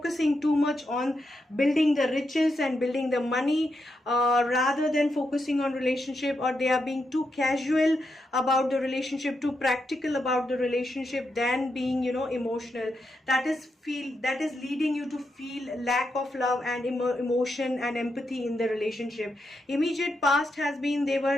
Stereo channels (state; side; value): normal; both; correlation 0.84